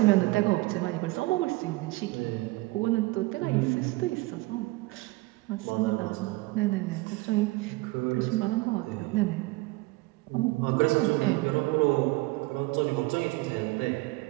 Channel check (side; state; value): left; quieter; 22.1 dB